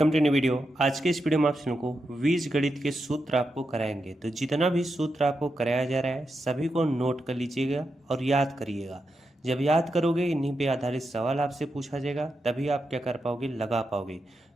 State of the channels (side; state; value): both; normal; correlation 0.86